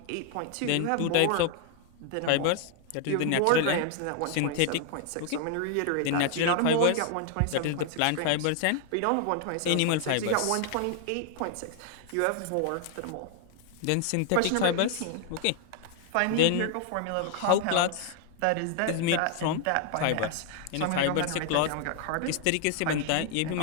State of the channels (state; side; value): different; both; correlation 0.00